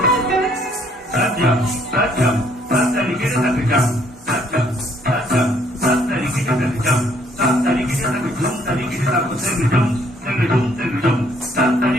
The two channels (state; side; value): normal; both; correlation 0.65